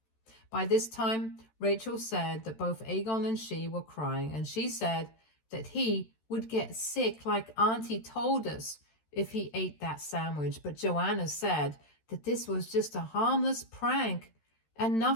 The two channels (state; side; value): late; right; 13 ms